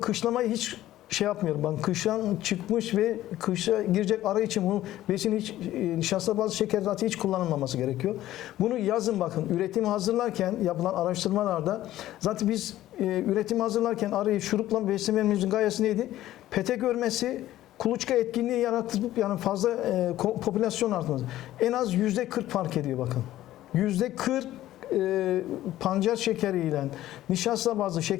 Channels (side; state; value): right; quieter; 14.2 dB